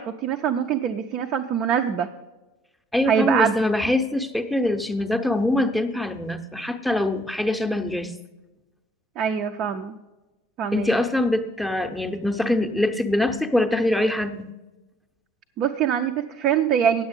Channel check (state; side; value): normal; both; correlation 0.65